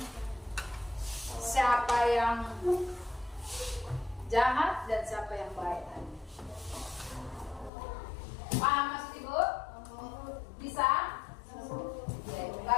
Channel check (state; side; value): drops out; right; at 7.7 s